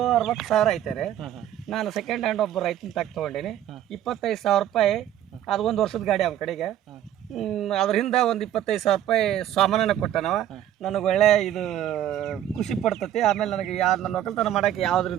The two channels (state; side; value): quieter; left; 11.5 dB